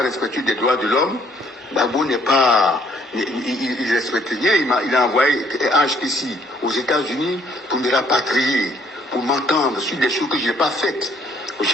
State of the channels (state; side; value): normal; both; correlation 0.63